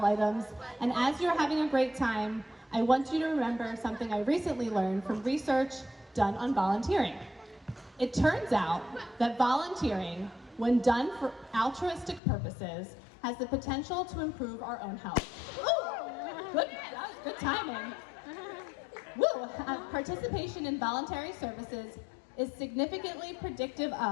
items. And as you're having a great time, I want you to remember something I recently learned from research done on volunteering. It turns out that volunteering, when done for altruistic purposes, has the potential to improve our own health. Ooh, that was good timing. Woo! Participation in voluntary services is significantly predictive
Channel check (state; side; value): drops out; right; at 12.2 s